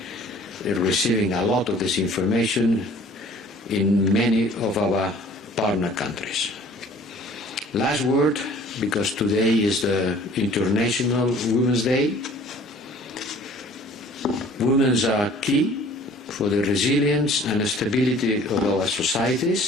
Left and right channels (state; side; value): normal; both; correlation 0.51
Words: receiving a lot of this information in many of our partner countries. Last word, because today is the International Women's Day. Women are key for the resilience and stability of our